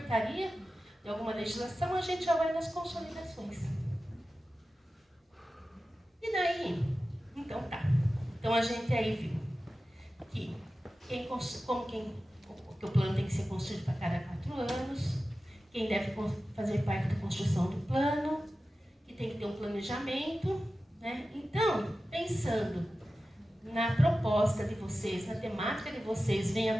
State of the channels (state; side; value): normal; both; correlation 0.94